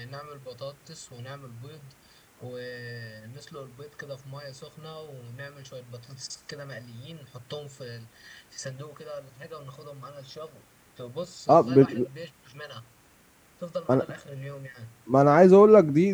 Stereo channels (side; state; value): both; identical; correlation 1.00